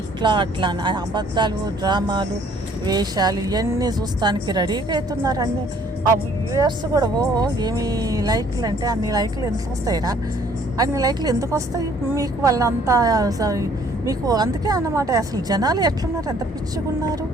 ఇట్లా అట్లా అబద్ధాలు, డ్రామాలు, వేషాలు ఇవన్నీ చూస్తానికి రెడీగా అవుతున్నారు. అన్నీ ఆ వ్యూయర్స్ కూడా ఏమి లైక్లు అంటే అన్ని లైక్లు ఎందుకు వస్తాయిరా? అన్ని లైక్లు ఎందుకు వస్తాయి మీకు? వాళ్ళంతా మీకు అందుకే అన్నమాట. అసలు జనాలు ఎట్లున్నారు, ఎంత పిచ్చిగున్నారు,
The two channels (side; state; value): both; normal; correlation 0.59